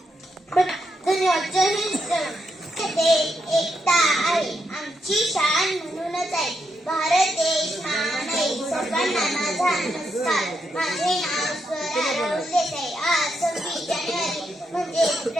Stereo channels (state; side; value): normal; both; correlation 0.82